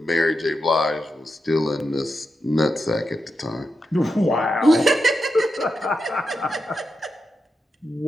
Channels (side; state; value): both; normal; correlation 0.87